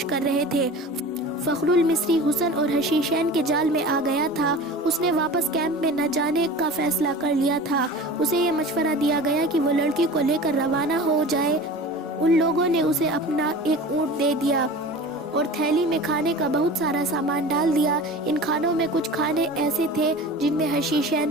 کر رہے تھے۔ فخر المصری حسن اور حشیشین کے جال میں آ گیا تھا۔ اس نے واپس کیمپ میں نہ جانے کا فیصلہ کر لیا تھا۔ اسے یہ مشورہ دیا گیا کہ وہ لڑکی کو لے کر روانہ ہو جائے۔ ان لوگوں نے اسے اپنا ایک اونٹ دے دیا اور تھیلی میں کھانے کا بہت سارا سامان ڈال دیا۔ ان کھانوں میں کچھ کھانے ایسے تھے جن میں حشیشین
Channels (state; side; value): normal; both; correlation 0.36